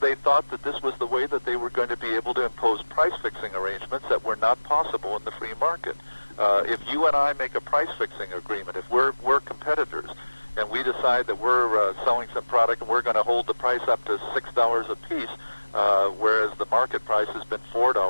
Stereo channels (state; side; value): inverted; both; correlation -1.00